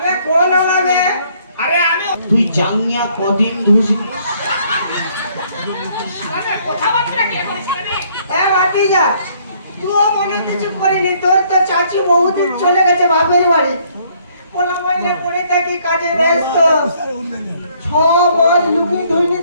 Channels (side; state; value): both; inverted; correlation -0.64